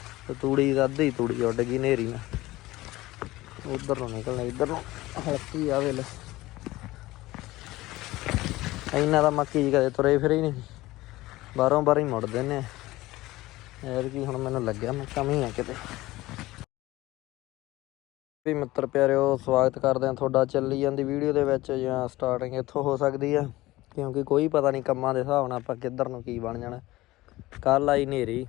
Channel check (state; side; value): quieter; right; 18.3 dB